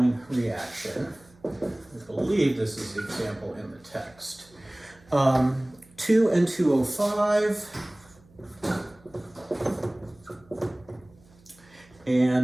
reaction. I believe this is the example in the text. 2N2O5,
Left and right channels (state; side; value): noise; right; hum, 28 dB below the sound